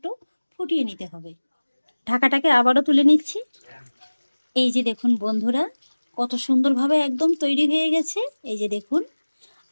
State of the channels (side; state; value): both; inverted; correlation -1.00